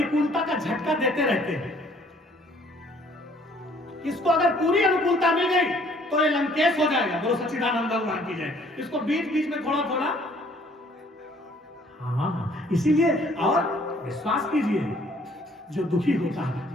का झटका देते रहते हैं। इसको अगर पूरी अनुकूलता मिल गई तो ये लंकेश हो जाएगा, बोलो सच्चिदानंद भगवान की जय। इसको बीच बीच में थोड़ा थोड़ा, हाँ, इसीलिए और विश्वास कीजिए जो दुखी होता है,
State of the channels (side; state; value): both; normal; correlation 0.60